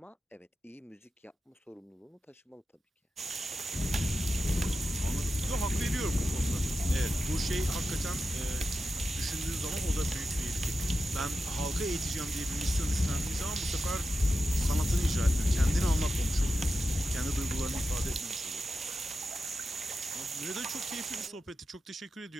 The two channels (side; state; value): both; normal; correlation 0.91